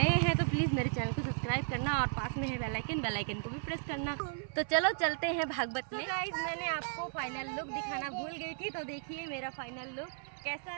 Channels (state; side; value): silent; left; 54 dB below the other